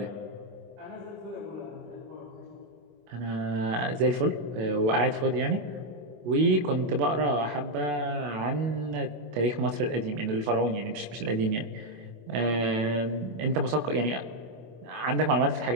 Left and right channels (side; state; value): left; late; 25 ms